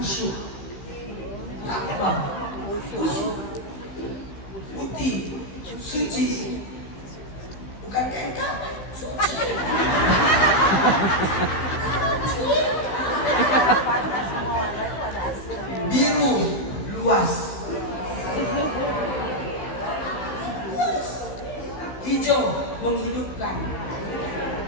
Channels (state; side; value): late; right; 15 ms